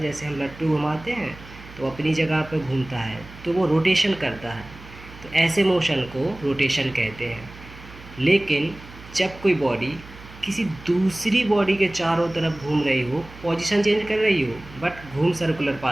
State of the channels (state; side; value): noise; right; hum, 18 dB below the sound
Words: हम लट्टू घुमाते हैं तो अपनी जगह पर घूमता है तो वो रोटेशन करता है। तो ऐसे मोशन को रोटेशन कहते हैं। लेकिन जब कोई बॉडी किसी दूसरी बॉडी के चारों तरफ घूम रही हो, पोजीशन चेंज कर रही हो बट घूम सर्कुलर